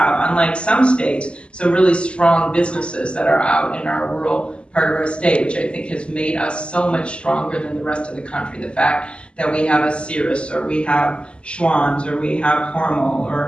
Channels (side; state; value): right; late; 0.053 ms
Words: unlike some states, some really strong businesses that are out in our rural part of our state, which I think has made us so much stronger than the rest of the country. The fact that we have a Cirrus, or we have Schwann's, or we have Hormel,